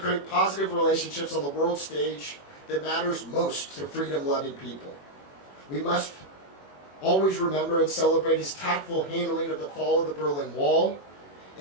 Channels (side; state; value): right; late; 21 ms